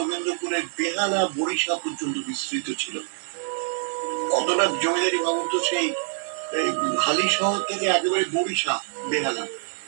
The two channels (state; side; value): silent; left; digital silence